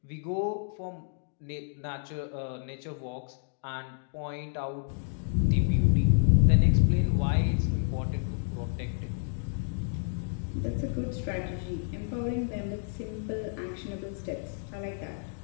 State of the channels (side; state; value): right; silent; digital silence